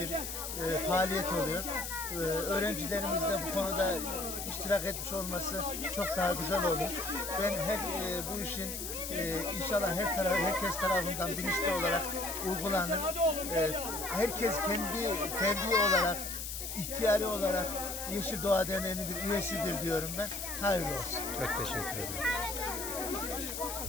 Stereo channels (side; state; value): left; noise; hiss, 6 dB below the sound